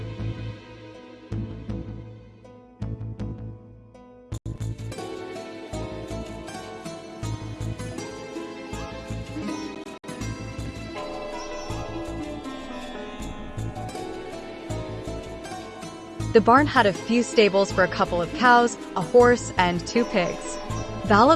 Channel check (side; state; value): both; identical; correlation 1.00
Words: The barn had a few stables for a couple of cows, a horse, and 2 pigs. Val